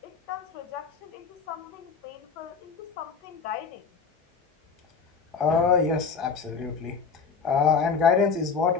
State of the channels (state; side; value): quieter; right; 5.5 dB